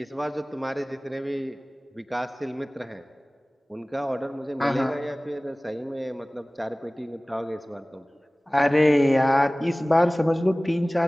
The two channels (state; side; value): normal; both; correlation 0.98